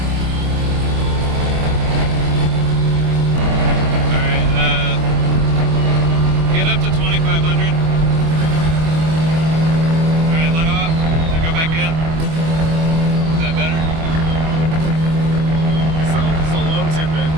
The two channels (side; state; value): left; late; 24 ms